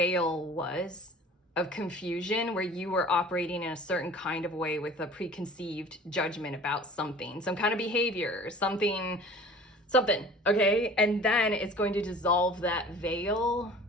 was of confusion, where you were operating in a certain kind of way with a preconceived judgment about something, some kind of behavior, something, okay? And then it's going to dissolve that veil,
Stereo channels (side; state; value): both; normal; correlation 0.44